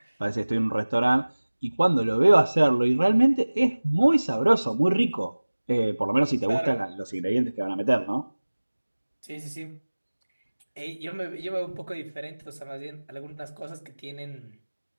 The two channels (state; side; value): inverted; both; correlation -1.00